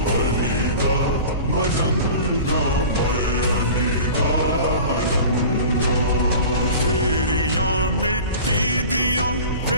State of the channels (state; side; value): inverted; both; correlation -0.38